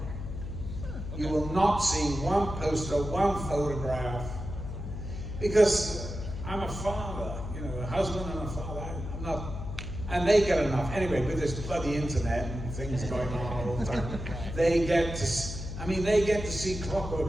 Okay. You will not see one poster, one photograph, because I'm a father, a husband and a father. I'm not, and they get enough. Anyway, with this bloody internet and things going on all the time, they get to see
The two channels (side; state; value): left; noise; hum, 7 dB below the sound